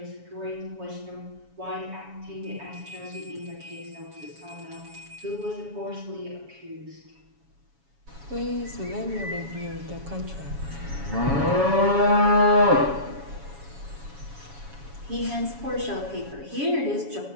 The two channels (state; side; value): late; left; 7.1 ms